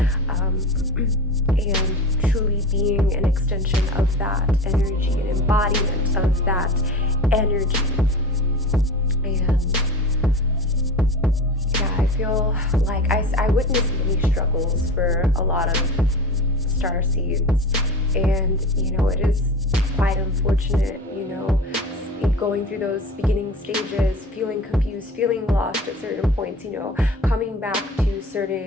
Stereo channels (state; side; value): normal; both; correlation 0.32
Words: and truly being an extension of that energy, an embodiment of that energy. And yeah, I feel like I witnessed many struggles for a lot of starseeds, and, you know, it is quite unfortunate, you know, going through those beginning stages, feeling confused, feeling lost at certain points, you know, coming back to